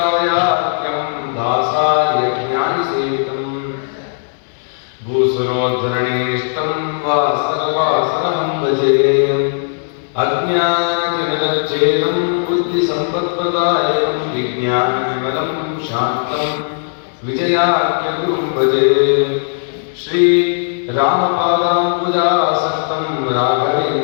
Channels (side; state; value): right; silent; digital silence